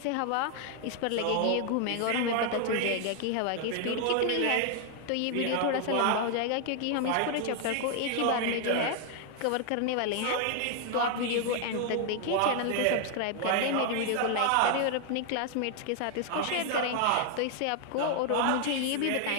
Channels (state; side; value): different; both; correlation 0.00